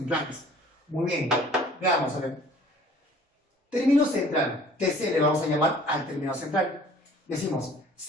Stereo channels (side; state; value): both; normal; correlation 0.52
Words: Muy bien, veamos a ver. Término central, TC le vamos a llamar al término central. Decimos,